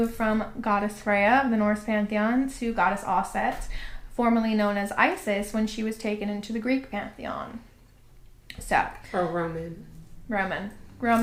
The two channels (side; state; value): both; identical; correlation 1.00